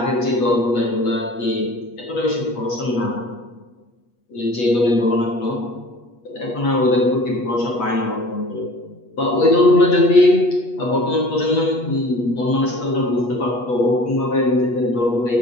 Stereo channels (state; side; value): late; right; 8.3 ms